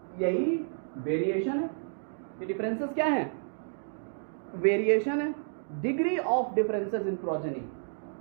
यही वेरिएशन है। ये डिफरेंसेस क्या है, वेरिएशन है। Degree of differences in progeny,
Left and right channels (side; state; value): left; silent; digital silence